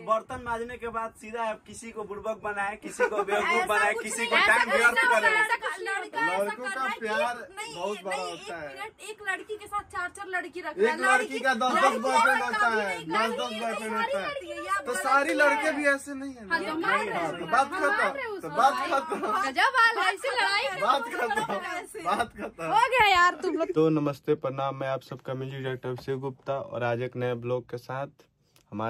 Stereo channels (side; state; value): both; identical; correlation 1.00